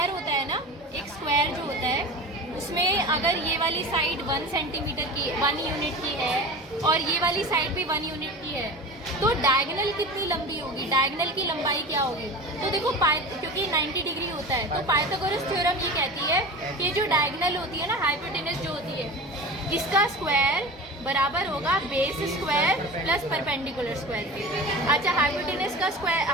होता है ना, एक स्क्वायर जो होता है उसमें अगर ये वाली साइड 1 सेंटीमीटर की 1 यूनिट की है और ये वाली साइड भी 1 यूनिट की है, तो डायगोनल कितनी लंबी होगी, डायगोनल की लंबाई क्या होगी। तो देखो क्योंकि 90 डिग्री होता है तो पाइथागोरस थ्योरम ये कहती है कि जो डायगोनल होती है ना, हाइपोटेनस जो होती है, इसका स्क्वायर बराबर होगा base square plus perpendicular square के। अच्छा, हाइपोटेनस का स्क्वायर,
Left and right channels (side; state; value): both; normal; correlation 0.33